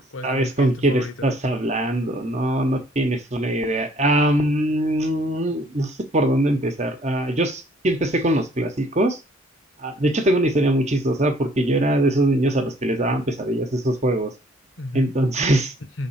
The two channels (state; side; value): normal; both; correlation 0.60